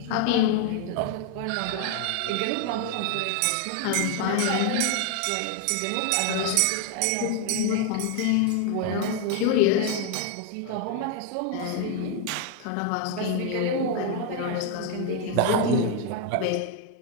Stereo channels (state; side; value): different; both; correlation 0.01